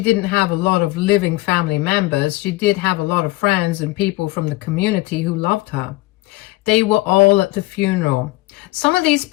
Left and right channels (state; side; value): quieter; right; 19.9 dB